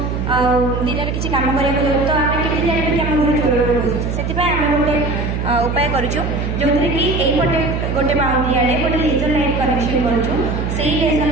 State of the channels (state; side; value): noise; right; hum, 2 dB below the sound